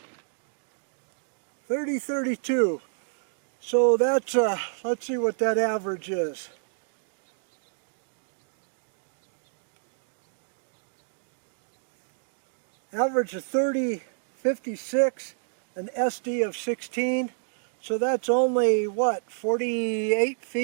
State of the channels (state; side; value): silent; left; digital silence